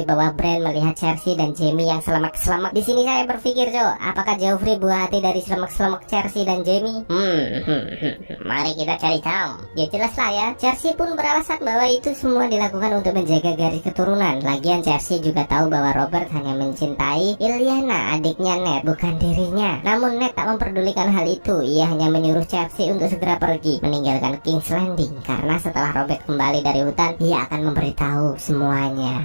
bahwa Bran melihat Cersei dan Jaime yang selamat-selamat. Di sini saya berpikir, apakah Joffrey buah hati dari selamat-selamat Cersei dan Jaime? Mari kita cari tahu. Ya jelas lah ya. Cersei pun beralasan bahwa itu semua dilakukan untuk menjaga garis keturunan. Lagian Cersei juga tahu bahwa Robert hanya mencintai Lyanna, adiknya Ned, bukan dirinya. Namun Ned tak memperdulikan hal itu. Ia hanya menyuruh Cersei untuk segera pergi, meninggalkan King's Landing. Karena setelah Robert kembali dari hutan, ia akan memberitahu semuanya.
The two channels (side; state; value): both; inverted; correlation -1.00